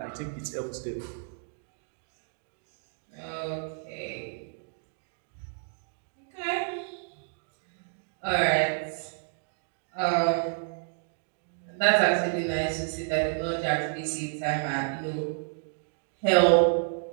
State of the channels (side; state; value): left; silent; digital silence